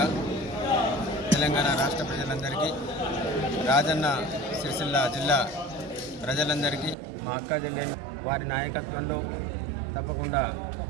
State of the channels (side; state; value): left; drops out; at 7.0 s